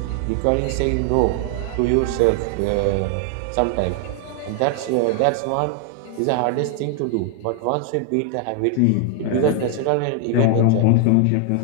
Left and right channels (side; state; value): both; different; correlation 0.00